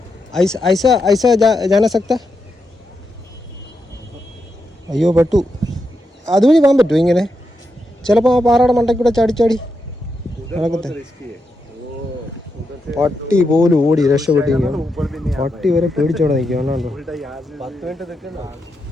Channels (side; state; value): both; normal; correlation 0.85